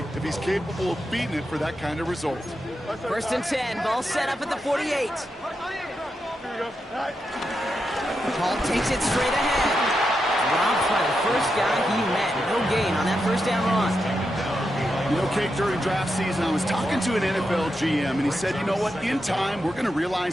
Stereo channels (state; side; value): normal; both; correlation 0.86